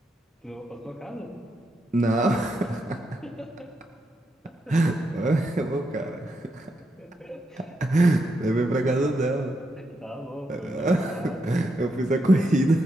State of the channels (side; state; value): both; normal; correlation 0.82